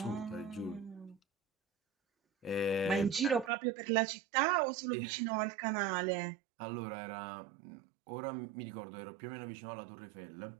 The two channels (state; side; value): drops out; left; at 3.5 s